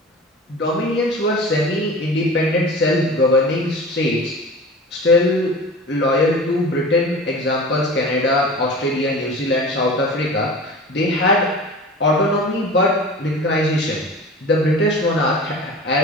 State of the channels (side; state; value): both; normal; correlation 0.37